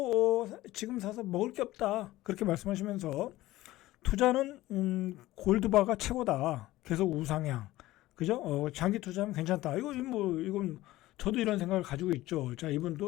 지금 사서 먹을 게 없다. 그렇게 말씀하시면서 투자는 골드바가 최고다. 계속 우상향. 그죠? 장기 투자하면 괜찮다. 이건 저도 이런 생각을 가지고 있죠. 자,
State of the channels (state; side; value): quieter; right; 16.8 dB